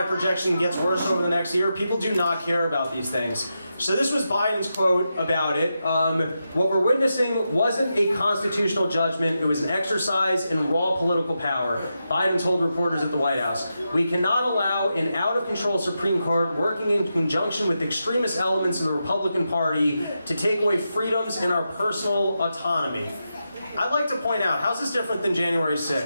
gets worse over the next year, people do not care about these things. So this was Biden's quote about it. What we're witnessing wasn't a constitutional judgment. It was an exercise in raw political power. Biden told reporters at the White House, "We cannot allow an out-of-control Supreme Court working in conjunction with extremist elements of the Republican Party to take away freedoms in our personal autonomy." I'd like to point out, how's this different than January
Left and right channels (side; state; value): both; inverted; correlation -0.87